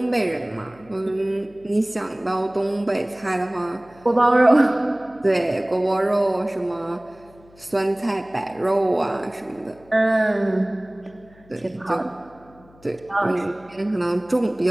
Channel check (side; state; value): left; noise; hum, 27 dB below the sound